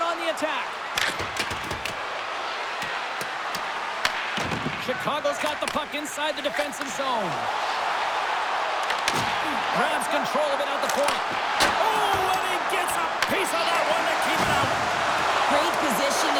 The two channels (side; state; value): both; identical; correlation 1.00